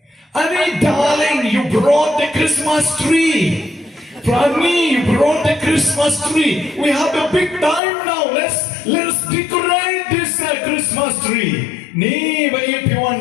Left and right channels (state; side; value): drops out; right; at 7.8 s